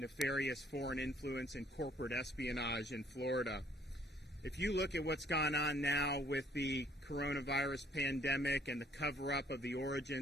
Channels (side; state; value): both; normal; correlation 0.62